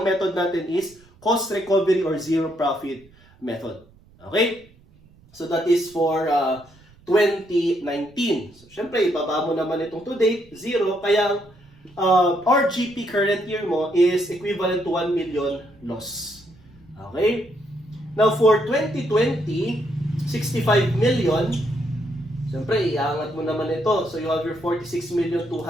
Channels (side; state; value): right; noise; rumble, 28 dB below the sound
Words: method natin is cost recovery or zero profit method. Okay? So that is for 2019. So syempre, ibaba mo naman itong to date, 0. Kaya RGP current year mo is equivalent to 1 million loss. Okay? Now for 2020, 65 million. Siyempre, iangat mo naman ito. So you have your